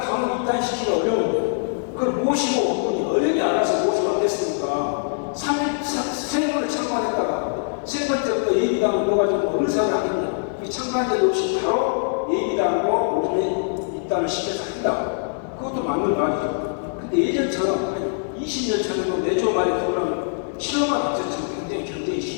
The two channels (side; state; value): right; silent; digital silence